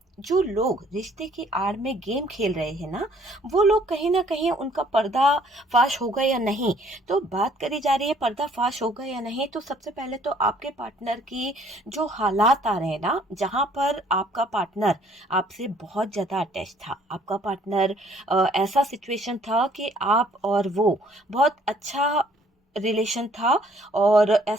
जो लोग रिश्ते की आड़ में गेम खेल रहे हैं ना, वो लोग कहीं ना कहीं उनका पर्दा फाश होगा या नहीं। तो बात करी जा रही है पर्दा फाश होगा या नहीं, तो सबसे पहले तो आपके पार्टनर की जो हालात आ रहे हैं ना, जहां पर आपका पार्टनर आपसे बहुत ज्यादा अटैच था, आपका पार्टनर ऐसा सिचुएशन था कि आप और वो बहुत अच्छा रिलेशन था, और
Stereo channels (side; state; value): both; normal; correlation 0.60